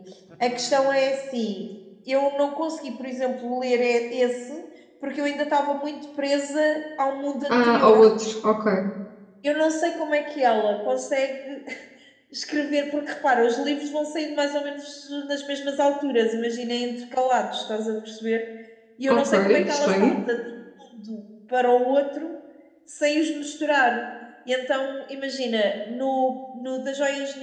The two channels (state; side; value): identical; both; correlation 1.00